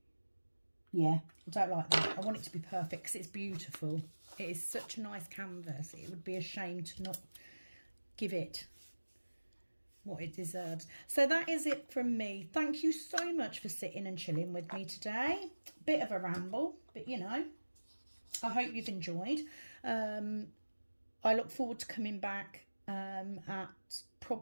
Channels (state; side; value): inverted; both; correlation -1.00